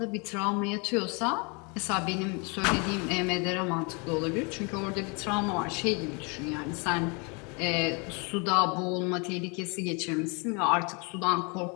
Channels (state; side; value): quieter; right; 32.2 dB